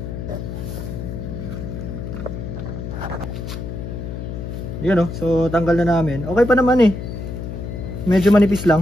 Yun oh, so tanggal na namin. Okay pa naman eh. Medyo manipis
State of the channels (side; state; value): left; noise; hum, 6 dB below the sound